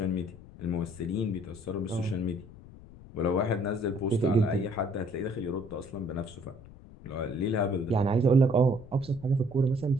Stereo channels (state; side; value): noise; left; rumble, 19 dB below the sound